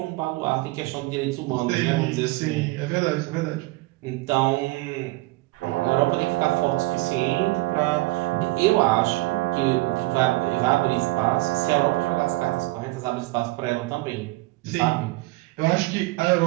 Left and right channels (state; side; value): quieter; left; 21.0 dB